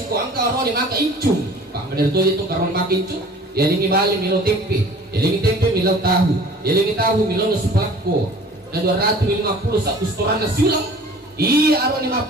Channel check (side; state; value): both; normal; correlation 0.47